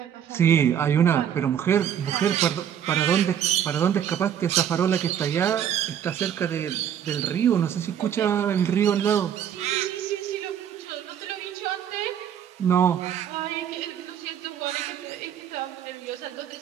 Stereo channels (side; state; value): left; quieter; 9.3 dB